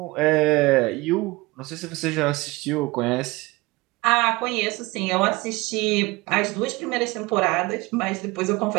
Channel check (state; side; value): quieter; left; 22.2 dB